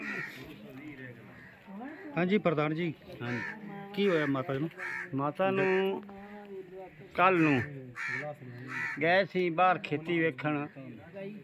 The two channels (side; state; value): both; identical; correlation 1.00